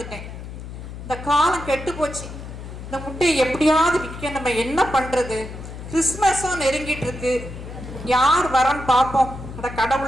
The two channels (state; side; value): noise; left; hum, 11 dB below the sound